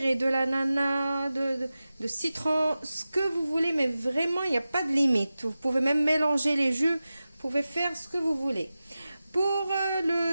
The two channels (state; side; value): inverted; both; correlation -0.95